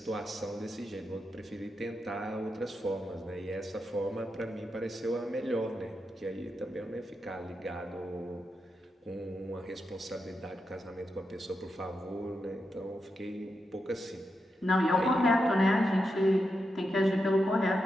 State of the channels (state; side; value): normal; both; correlation 0.86